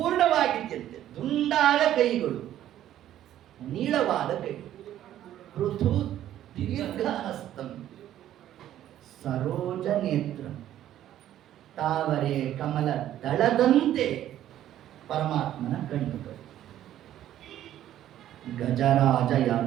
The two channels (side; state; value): left; quieter; 12.1 dB